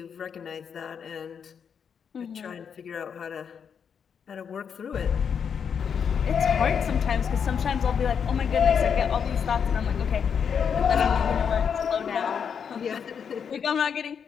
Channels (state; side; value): quieter; right; 7.1 dB